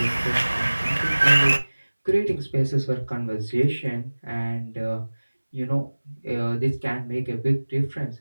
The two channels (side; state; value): both; inverted; correlation -1.00